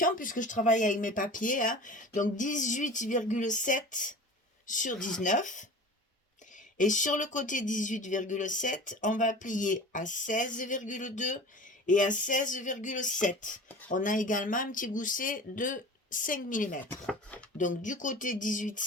puisque je travaille avec mes papiers. Hein. Donc 18,7 sur 19. Et sur le côté 18,7, on va plier à 16,2 et à 16,7. On a également un petit gousset de 5 mm. Donc du côté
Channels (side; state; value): both; normal; correlation 0.38